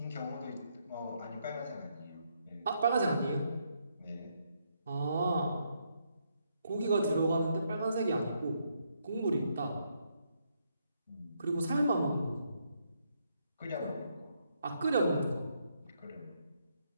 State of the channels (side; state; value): both; inverted; correlation -0.76